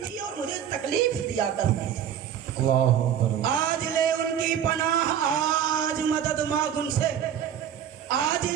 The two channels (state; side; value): quieter; left; 9.3 dB